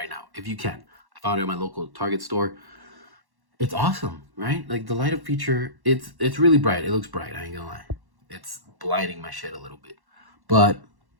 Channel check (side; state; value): left; late; 1.1 ms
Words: now if you can. I found it at my local Target store. It's awesome, right? Like the light up feature, it's really bright. It looks bright, I ain't gonna lie. It's blinding my shit a little bit. But